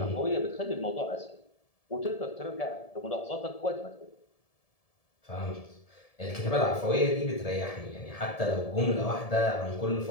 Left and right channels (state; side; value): late; right; 1.7 ms